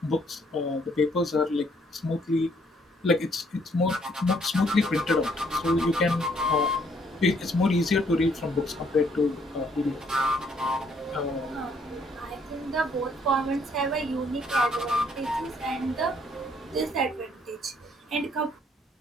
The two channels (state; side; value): normal; both; correlation 0.66